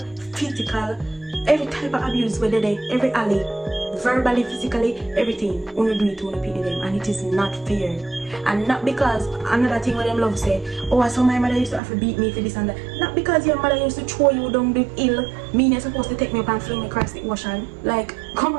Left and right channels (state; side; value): drops out; left; at 11.8 s